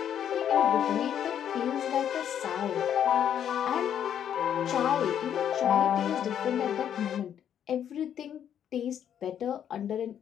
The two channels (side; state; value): right; quieter; 9.4 dB